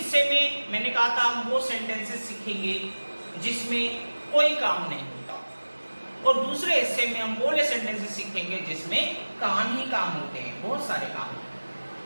में मैंने कहा था हम वो सेंटेंसेस सीखेंगे जिसमें कोई काम नहीं होता, और दूसरे हिस्से में हम वो सेंटेंसेस सीखेंगे जिसमें काम ही काम होते हैं, बहुत सारे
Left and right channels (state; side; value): inverted; both; correlation -1.00